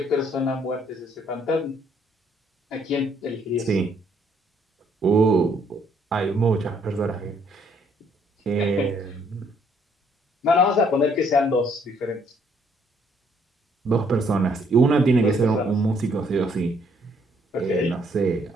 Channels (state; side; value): normal; both; correlation 0.67